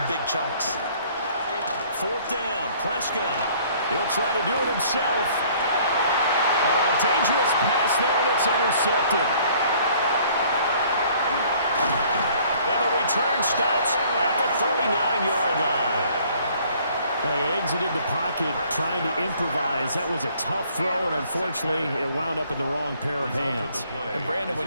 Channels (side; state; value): both; inverted; correlation -0.57